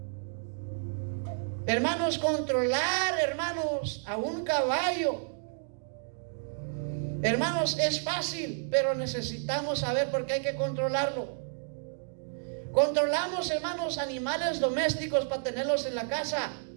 Hermanos, controlar, hermanos, a un caballo, hermanos, es fácil, pero necesitamos saber por qué hay que controlarlo. Controlamos, hermanos, animales domésticos para tenerlos en la casa.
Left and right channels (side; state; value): left; silent; digital silence